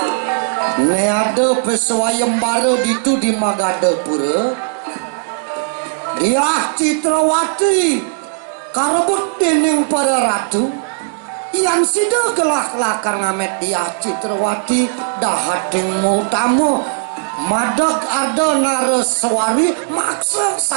neade peswayembara ditu di Magadapura dia Citrawati karebut dening para ratu yang sida gelah lakar ngamet dia Citrawati dahating utama madag arda naraswari maksa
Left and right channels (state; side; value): silent; left; digital silence